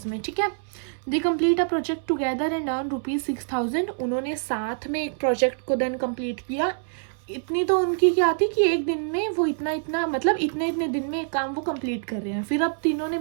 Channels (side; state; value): left; silent; 61 dB below the other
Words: में. ठीक है, they complete a project together and earn ₹6,000. उन्होंने साथ में एक प्रोजेक्ट को देन कंप्लीट किया. इतनी तो उनकी क्या थी कि एक दिन में वो इतना मतलब इतने दिन में एक काम वो कंप्लीट कर रहे हैं. फिर अब तीनों ने